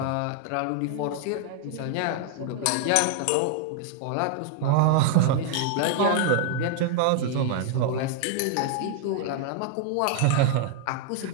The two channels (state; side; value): different; both; correlation 0.00